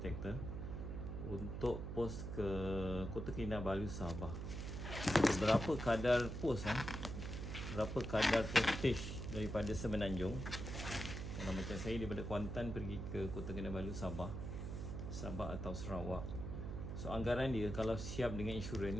untuk post ke Kota Kinabalu, Sabah. Berapa kadar post berapa kadar postage daripada Semenanjung. Kalau macam saya daripada Kuantan pergi ke Kota Kinabalu, Sabah atau Sarawak. So anggaran dia kalau siap dengan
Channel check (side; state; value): right; noise; hum, 5 dB below the sound